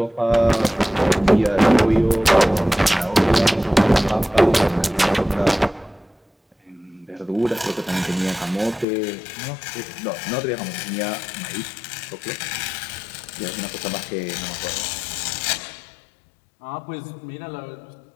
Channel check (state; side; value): drops out; right; at 8.8 s